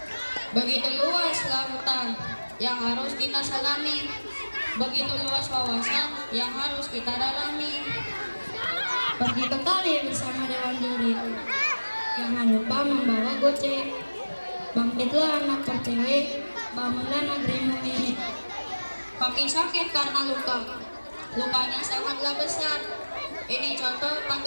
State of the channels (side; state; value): both; inverted; correlation -1.00